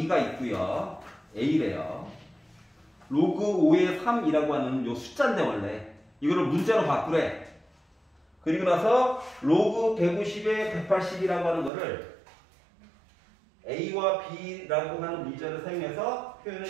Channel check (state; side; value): drops out; left; at 11.7 s